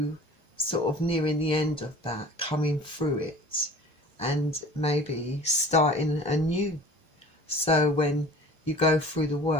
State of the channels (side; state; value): both; normal; correlation 0.44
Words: sort of nearing the end of that, coming through it and maybe starting anew. So when you go through the